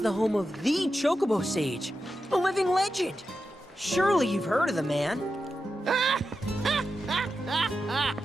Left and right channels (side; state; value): both; normal; correlation 0.89